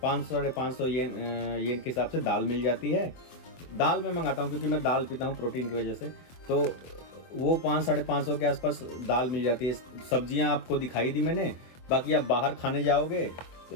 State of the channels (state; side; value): late; right; 24 ms